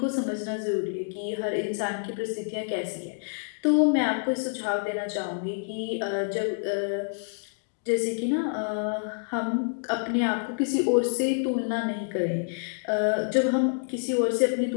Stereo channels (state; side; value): silent; right; digital silence